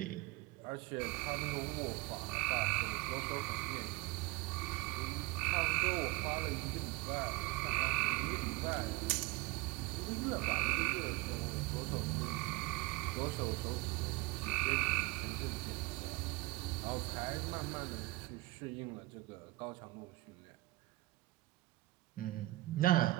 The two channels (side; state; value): left; quieter; 20.4 dB